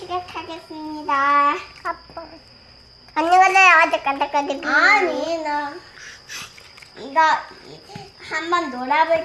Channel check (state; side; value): identical; both; correlation 1.00